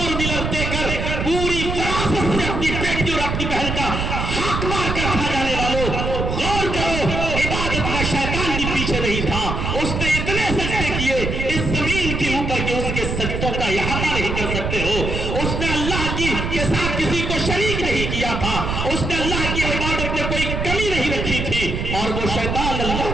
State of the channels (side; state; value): right; noise; rumble, 2 dB below the sound